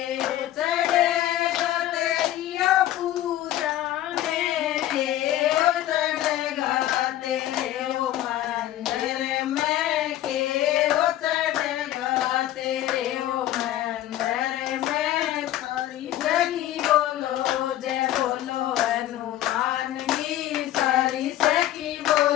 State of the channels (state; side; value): quieter; right; 13.5 dB